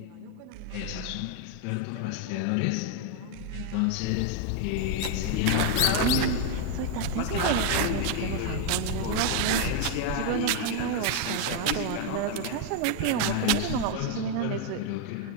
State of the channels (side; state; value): both; different; correlation 0.01